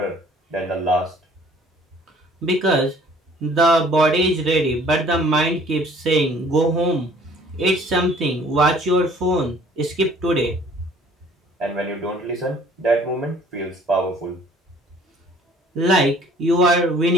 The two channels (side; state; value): both; normal; correlation 0.54